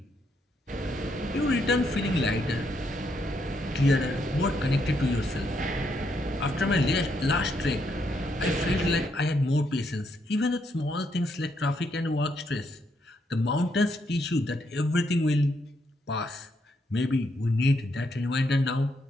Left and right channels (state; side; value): normal; both; correlation 0.76